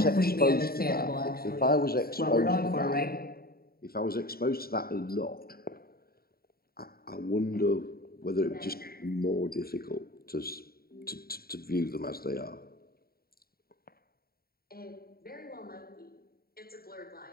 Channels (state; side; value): late; right; 0.44 ms